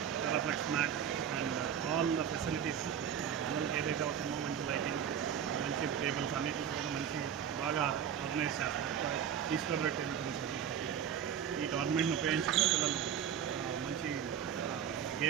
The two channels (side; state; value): left; quieter; 8.6 dB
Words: Teraflex mat and all the facilities పిల్లలకి ఏదైతే అవుతుందో మంచి లైటింగ్, మంచి టేబుల్స్ అన్నిటికీ కూడా మంచి బాగా ఆర్గనైజ్ చేస్తారు. ఈస్ట్ గోదావరి టేబుల్ టెన్నిస్ ఈ టోర్నమెంట్ని ఉపయోగించుకుని పిల్లలు మంచి